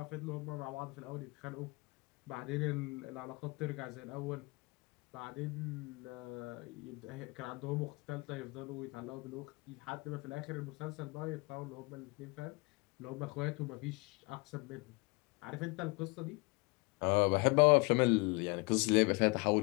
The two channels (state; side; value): quieter; right; 27.3 dB